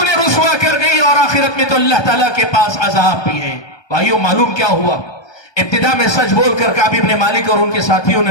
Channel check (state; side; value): late; right; 1.2 ms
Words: رسوا کر گئی اور آخرت میں تو اللہ تعالیٰ کے پاس عذاب بھی ہے. بھائیو معلوم کیا ہوا؟ ابتدا میں سچ بول کر کعب بن مالک اور ان کے ساتھیوں نے